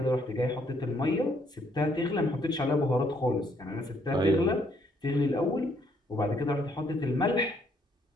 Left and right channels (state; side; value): normal; both; correlation 0.69